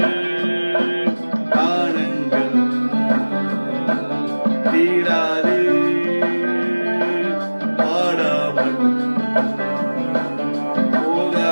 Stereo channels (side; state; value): both; inverted; correlation -1.00